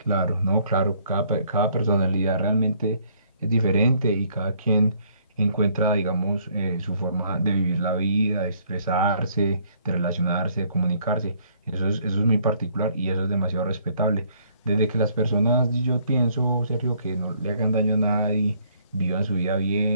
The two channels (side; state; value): both; inverted; correlation -0.64